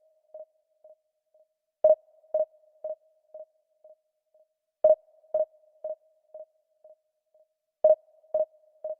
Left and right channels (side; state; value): both; identical; correlation 1.00